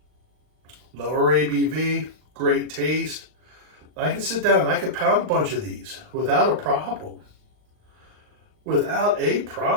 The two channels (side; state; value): left; late; 39 ms